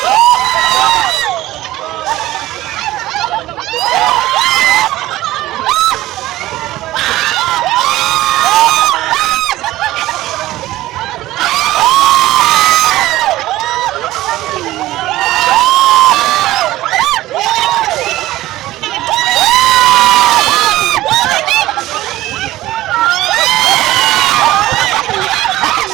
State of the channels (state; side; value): quieter; left; 16.1 dB